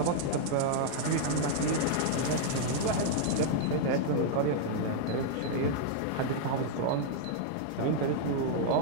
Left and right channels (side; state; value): both; different; correlation -0.01